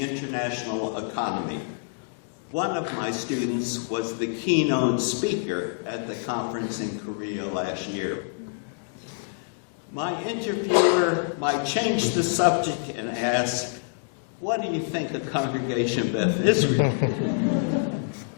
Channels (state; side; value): silent; right; digital silence